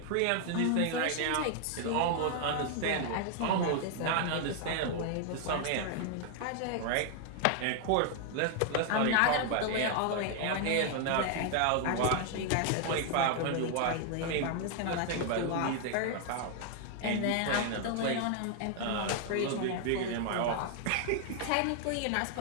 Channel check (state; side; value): different; both; correlation 0.00